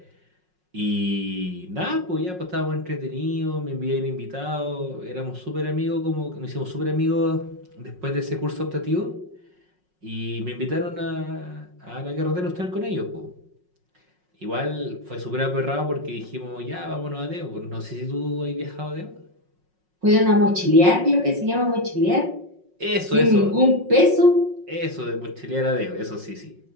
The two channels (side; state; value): left; late; 5.5 ms